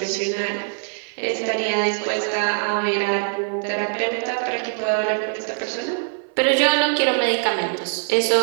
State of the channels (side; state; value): left; silent; 60 dB below the other